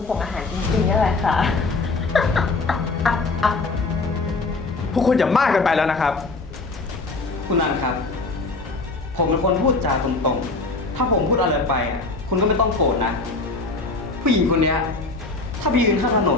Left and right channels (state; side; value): quieter; right; 3.5 dB